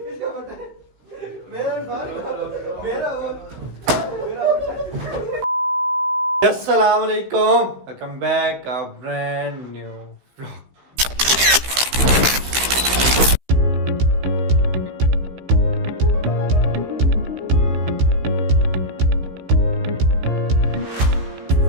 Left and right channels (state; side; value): late; left; 15 ms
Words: अस्सलाम वालेकुम, welcome back a brand new vlog.